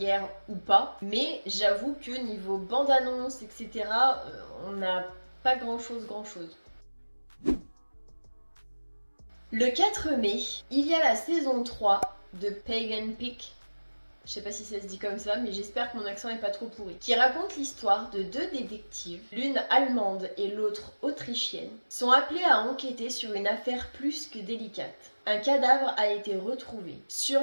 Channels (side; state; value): both; inverted; correlation -1.00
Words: ou pas. Mais j'avoue que niveau bande-annonce, etc., on n'a pas grand-chose. Le 4 mai, il y a la saison 3 de Pagan Peak. Je sais pas si ça se dit comme ça, mais j'espère que mon accent est pas trop pourri. Qui raconte l'histoire de 2 détectives, l'une allemande et l'autre autrichienne, sont appelés à enquêter sur une affaire plus que délicate. Un cadavre a été retrouvé sur